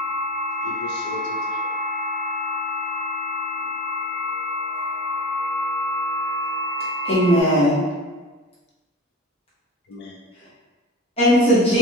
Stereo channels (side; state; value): both; normal; correlation 0.32